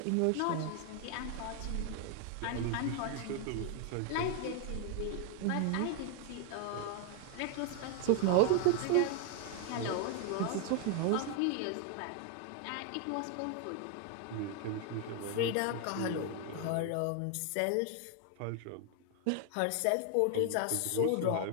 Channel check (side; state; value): both; different; correlation 0.01